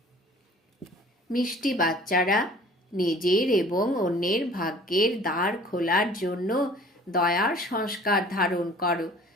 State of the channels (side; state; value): both; normal; correlation 0.49